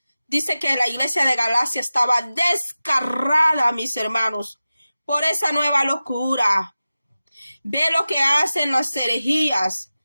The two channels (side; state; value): both; inverted; correlation -0.95